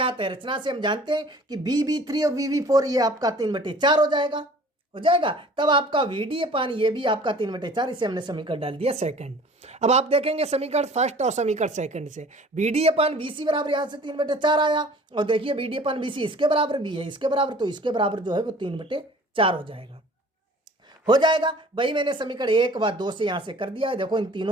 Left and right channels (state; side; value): normal; both; correlation 0.48